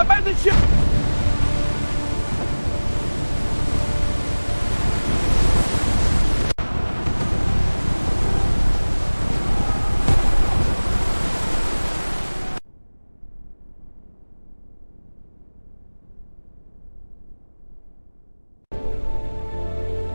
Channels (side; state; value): both; inverted; correlation -1.00